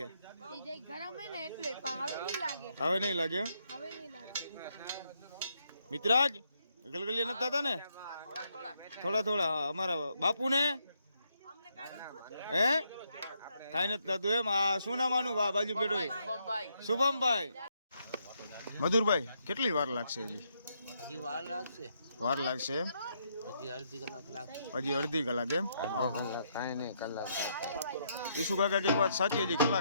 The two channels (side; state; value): both; inverted; correlation -0.76